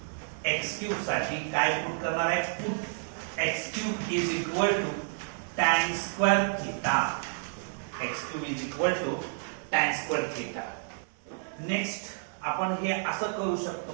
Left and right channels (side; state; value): left; silent; digital silence